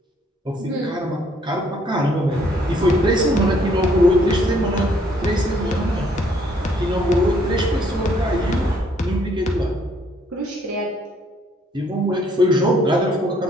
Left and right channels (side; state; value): both; normal; correlation 0.65